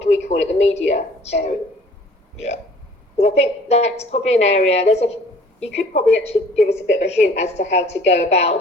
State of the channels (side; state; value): both; normal; correlation 0.53